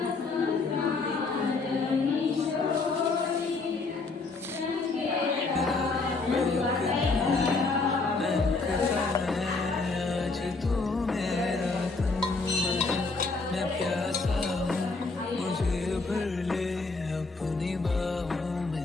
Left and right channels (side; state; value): right; quieter; 3.8 dB